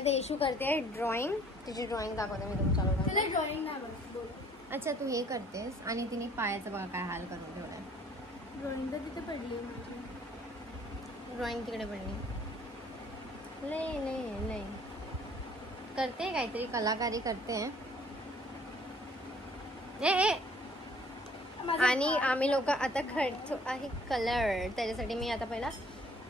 येशू करते ड्रॉइंग. तिची ड्रॉइंग दाखवते मी तुमच्याकडे. ड्रॉइंग नाही. अच्छा, तू हे करतेस आणि तिने पायाचं बघा काय हाल करून ठेवलाय. ड्रॉइंग तर तिथे पडली. ड्रॉइंग तिकडे पडली. लय करते, काहीतरी कलाकारी करते. आणि आम्ही लोक आता खेळतो आहे कलर. त्याच्यासाठी मी आता पहिला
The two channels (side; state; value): both; normal; correlation 0.56